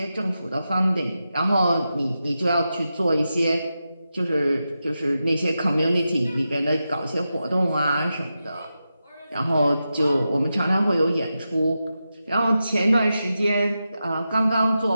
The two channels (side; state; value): both; inverted; correlation -0.90